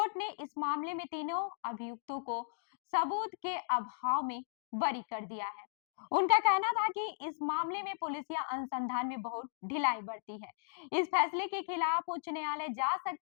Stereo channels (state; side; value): silent; right; digital silence